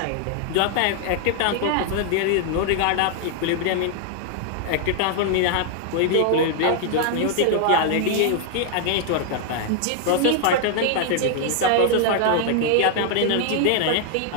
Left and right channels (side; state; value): both; different; correlation 0.00